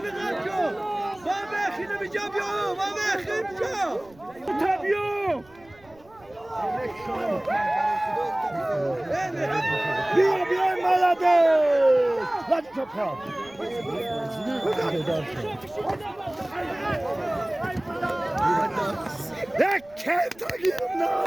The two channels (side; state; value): right; noise; rumble, 27 dB below the sound